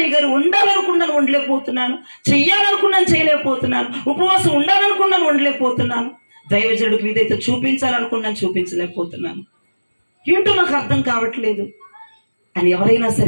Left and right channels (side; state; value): both; inverted; correlation -1.00